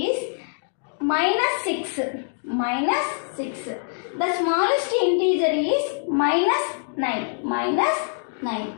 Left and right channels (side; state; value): right; silent; digital silence